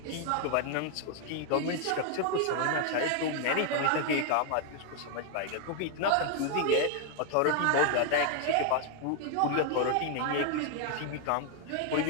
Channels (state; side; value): different; both; correlation 0.00